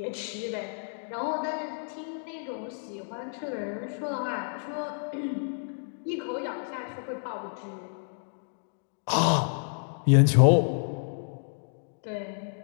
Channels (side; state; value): right; silent; digital silence